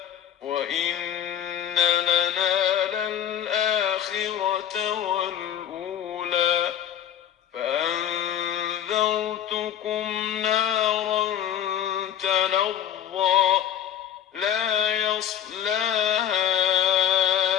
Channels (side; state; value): right; quieter; 10.3 dB